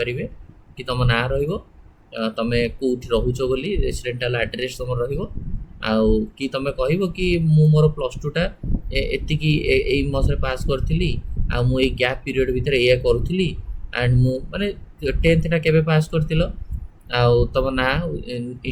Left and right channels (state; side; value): identical; both; correlation 1.00